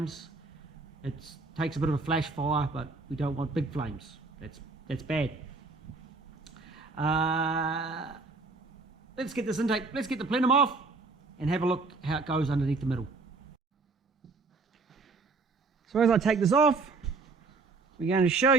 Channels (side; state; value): left; quieter; 4.0 dB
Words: It takes a bit of a flash fire, but we don't want big flames. That's bad. Let's get this intake, let's get the plenum off and have a look how it goes underneath the middle. So as I take this off, we're going to show